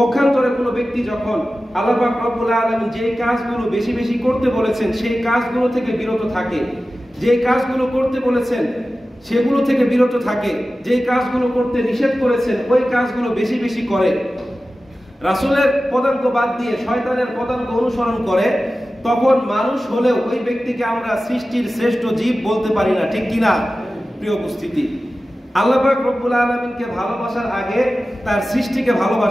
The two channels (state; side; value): normal; both; correlation 0.95